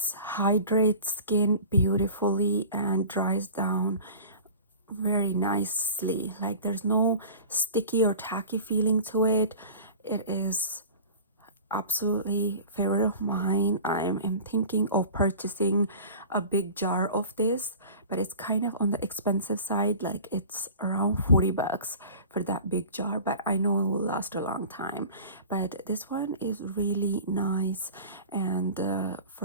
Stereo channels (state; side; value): inverted; both; correlation -0.39